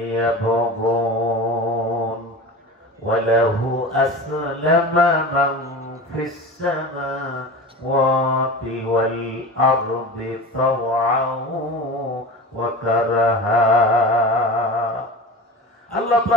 ইয়াবগুন ওয়া লাহু আসলামা মান ফিস সামাওয়াতি ওয়াল আরদি তাওআন ওয়া কারাহা। আল্লাহ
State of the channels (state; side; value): normal; both; correlation 0.32